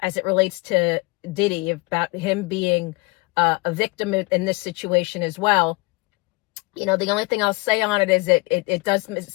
it relates to Diddy, about him being a victim in this situation as well. The only thing I'll say on it is it does,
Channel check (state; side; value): quieter; right; 25.9 dB